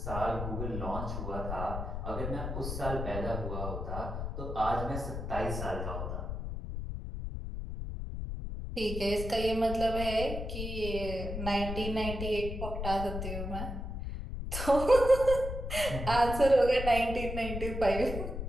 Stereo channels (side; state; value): left; noise; rumble, 5 dB below the sound